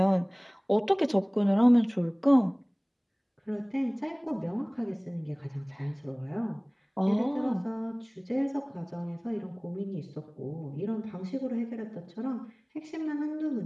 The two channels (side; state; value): both; identical; correlation 1.00